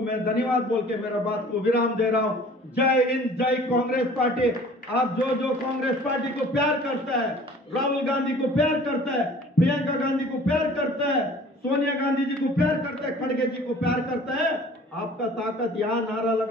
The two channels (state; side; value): normal; both; correlation 0.49